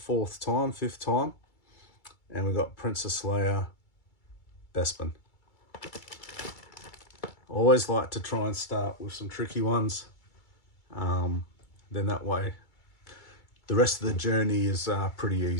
time. And we've got Princess Leia, Bespin. Always like to try and start with some tricky ones. Then that way, the rest of the journey is pretty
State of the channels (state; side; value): late; right; 2.3 ms